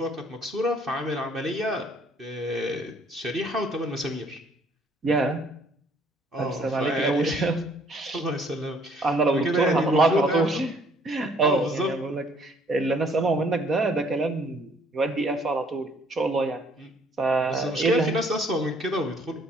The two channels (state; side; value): normal; both; correlation 0.62